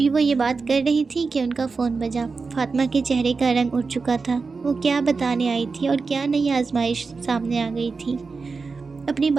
وہ یہ بات کر رہی تھی کہ ان کا فون بجا۔ فاطمہ کے چہرے کا رنگ اٹھ چکا تھا، وہ کیا بتانے آئی تھی اور کیا نئی آزمائش سامنے آ گئی تھی۔ اپنی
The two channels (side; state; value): left; quieter; 4.5 dB